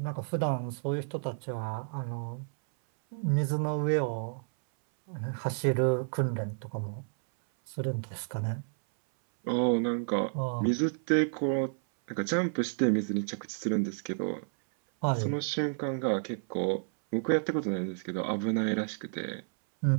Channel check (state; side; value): silent; left; 57 dB below the other